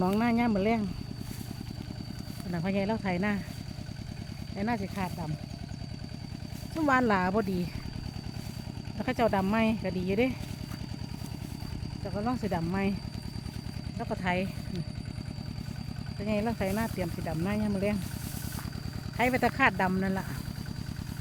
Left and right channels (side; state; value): both; identical; correlation 1.00